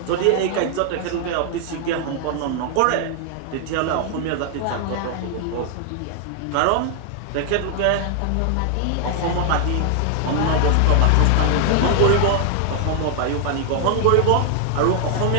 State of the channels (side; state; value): both; different; correlation 0.00